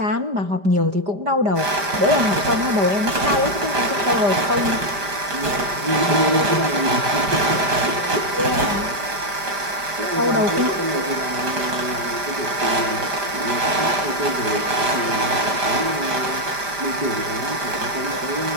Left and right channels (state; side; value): late; left; 5.0 ms